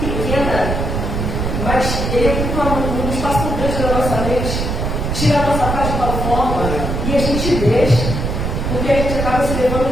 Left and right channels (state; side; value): noise; right; rumble, 2 dB below the sound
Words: pequena, mas ele ocupa um espaço muito grande na nossa mente, tira a nossa paz de tal forma e a gente deixa. Porque a gente acaba se